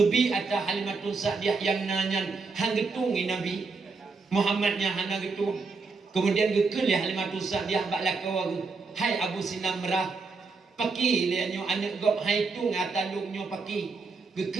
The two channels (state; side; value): quieter; left; 4.3 dB